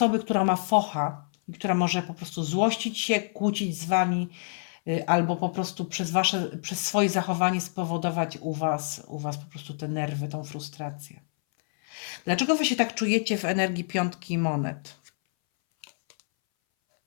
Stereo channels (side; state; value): right; silent; 60 dB below the other